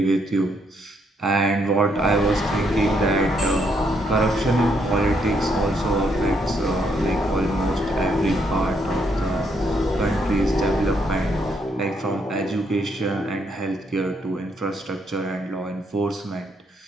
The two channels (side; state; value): both; normal; correlation 0.74